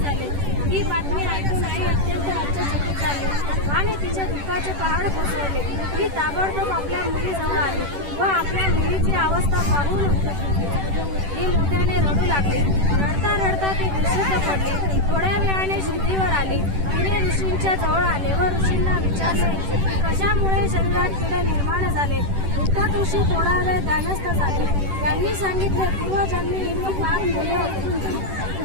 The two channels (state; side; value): late; left; 10 ms